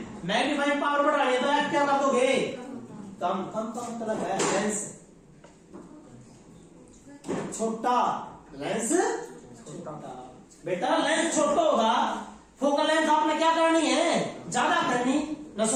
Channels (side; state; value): both; identical; correlation 1.00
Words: मैग्नीफाइंग पावर बढ़ानी है तो एफ क्या कर दोगे कम, कम का मतलब है लेंस छोटा, लेंस छोटा बेटा, लेंस छोटा होगा, फोकल लेंथ आपने क्या करनी है ज्यादा करनी ना,